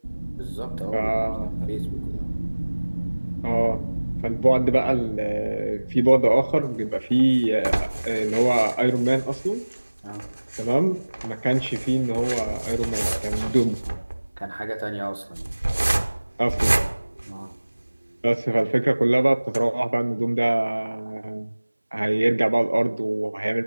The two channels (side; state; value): both; inverted; correlation -1.00